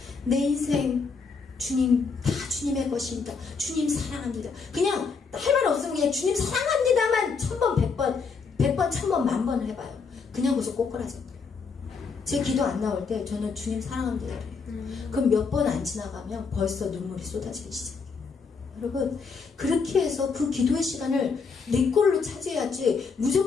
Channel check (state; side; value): quieter; right; 5.1 dB